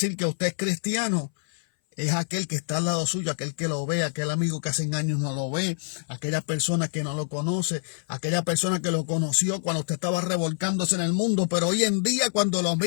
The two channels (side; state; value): right; silent; 60 dB below the other